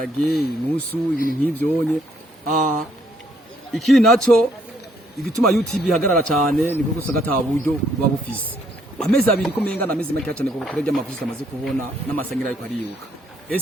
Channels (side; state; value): both; normal; correlation 0.69